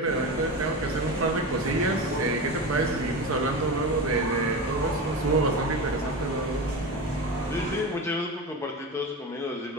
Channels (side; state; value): both; normal; correlation 0.24